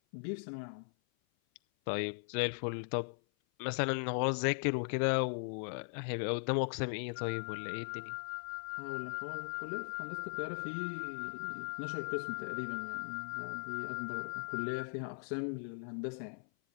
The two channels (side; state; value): right; silent; 52 dB below the other